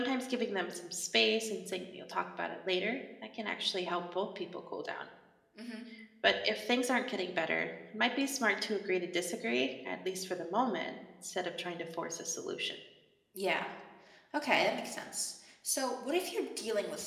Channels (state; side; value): identical; both; correlation 1.00